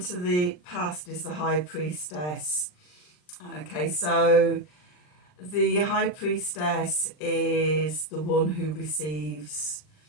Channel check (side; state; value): right; late; 39 ms